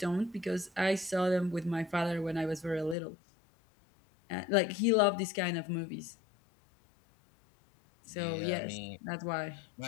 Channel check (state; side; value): drops out; right; at 3.0 s